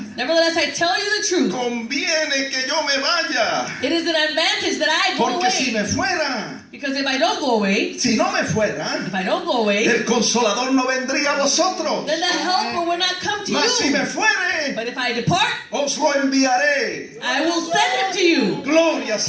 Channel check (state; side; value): identical; both; correlation 1.00